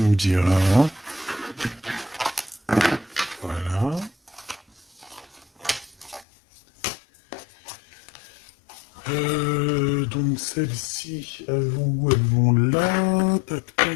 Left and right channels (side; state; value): right; drops out; at 6.2 s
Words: me diras, hein. Voilà. Donc celles-ci, elles vont où? Elles vont là, tac